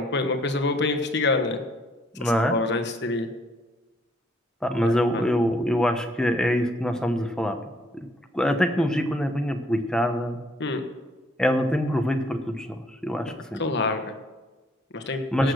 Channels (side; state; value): both; normal; correlation 0.66